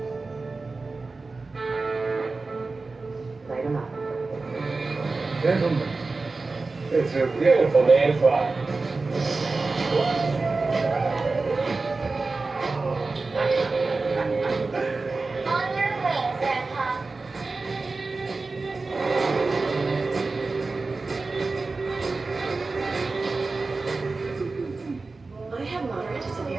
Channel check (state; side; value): quieter; left; 3.8 dB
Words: Light 'em up. Gentlemen, it's a beautiful day to fly. On your way, Grandpa. I have moderate to